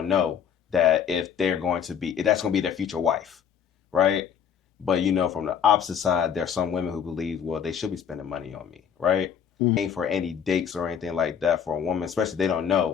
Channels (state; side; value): quieter; right; 8.0 dB